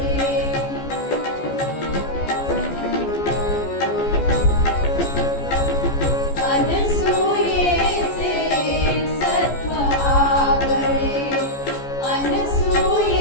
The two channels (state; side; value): late; right; 14 ms